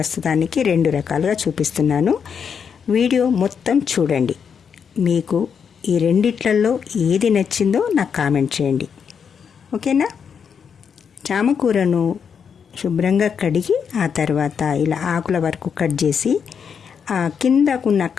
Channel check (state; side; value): quieter; right; 6.9 dB